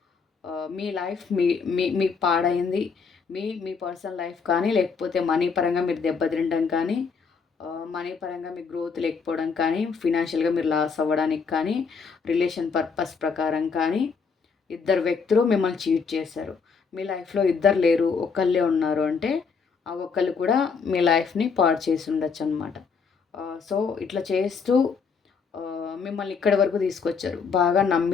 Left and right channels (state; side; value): quieter; right; 5.4 dB